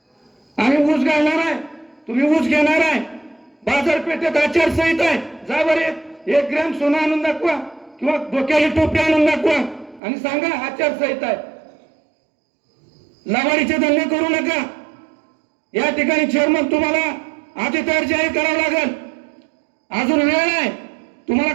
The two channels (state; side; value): drops out; left; at 10.0 s